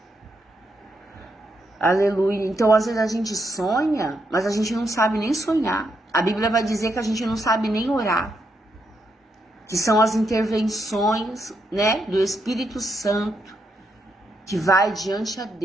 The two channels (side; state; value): both; normal; correlation 0.80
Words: Aleluia. Então, às vezes a gente sonha, mas a gente não sabe nem sonhar. A Bíblia vai dizer que a gente não sabe nem orar. Que são as intervenções, né, do Espírito Santo, que vai diante a